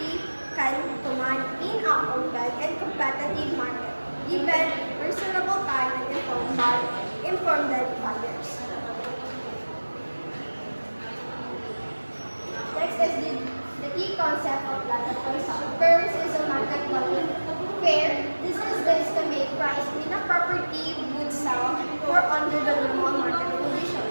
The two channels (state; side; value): inverted; both; correlation -1.00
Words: can command in a open and competitive market, given reasonable time and informed buyers. Next is the key concept of land appraisal. First is the market value. Fair, this is the estimate price in a property would sell for under the normal market condition,